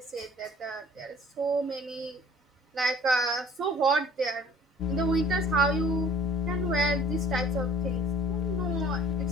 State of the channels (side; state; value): both; normal; correlation 0.51